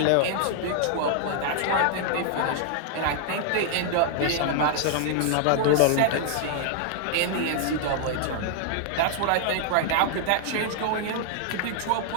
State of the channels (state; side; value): different; both; correlation -0.01